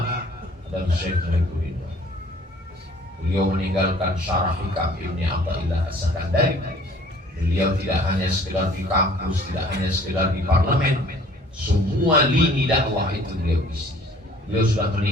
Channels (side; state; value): both; normal; correlation 0.54